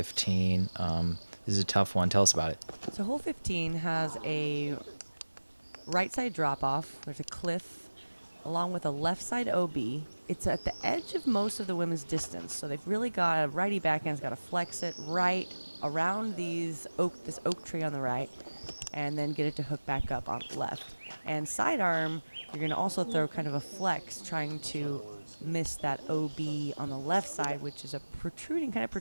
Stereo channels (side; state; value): both; inverted; correlation -1.00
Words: This is a tough one. Tell us about it. So hole 15 has a right side drop off. There's a cliff along with a left side OB. It's at the edge of most of the women's distance. So they've really got a righty backhand's got to flex it right around this oak tree on the right and then get it to hook back up on left. And sidearm, you're going to also throw kind of a flex trying to miss that OB on the left side, which is a kind of